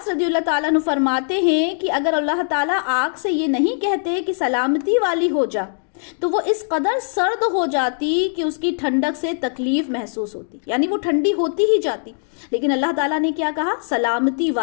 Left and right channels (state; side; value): silent; right; digital silence